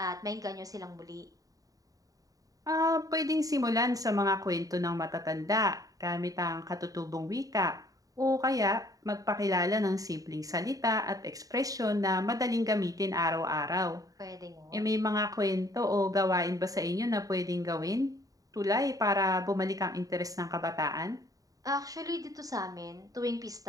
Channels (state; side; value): late; left; 0.17 ms